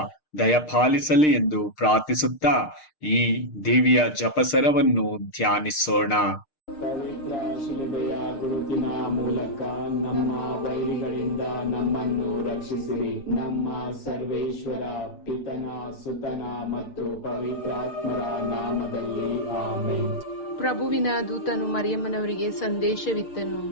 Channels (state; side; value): late; right; 6.5 ms